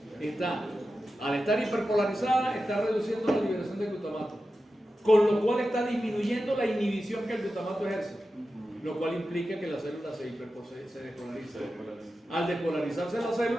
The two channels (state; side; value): normal; both; correlation 0.92